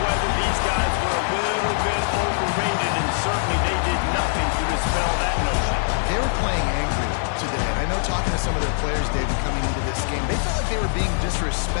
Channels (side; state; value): right; silent; digital silence